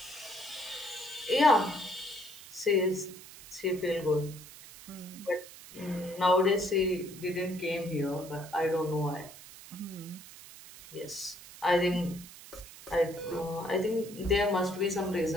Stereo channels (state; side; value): noise; right; hiss, 17 dB below the sound